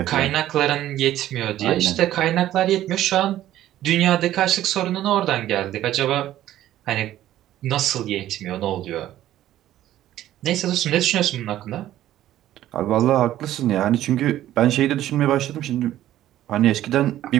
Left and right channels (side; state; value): left; quieter; 13.2 dB